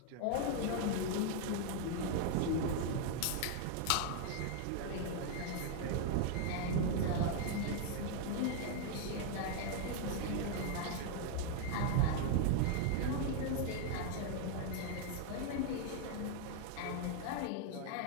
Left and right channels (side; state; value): both; different; correlation 0.00